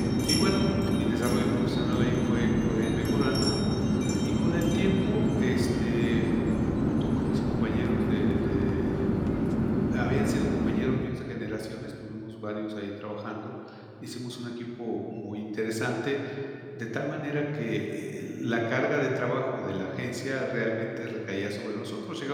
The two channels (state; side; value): identical; both; correlation 1.00